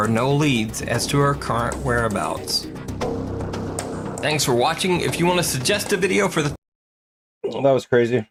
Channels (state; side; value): identical; both; correlation 1.00